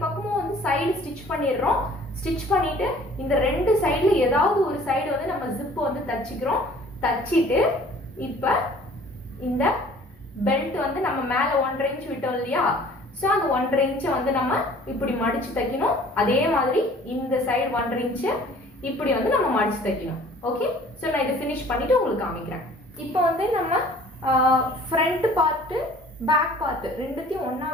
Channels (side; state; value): both; normal; correlation 0.51